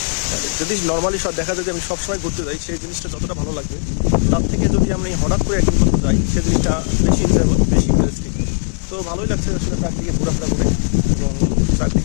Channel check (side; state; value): right; silent; digital silence